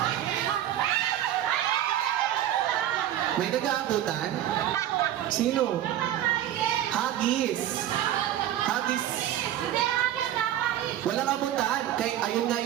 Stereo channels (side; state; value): left; quieter; 12.0 dB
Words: May nag-aabutan? Sino? Hagis. Hagis. Walang abutan. Kay, ayun nga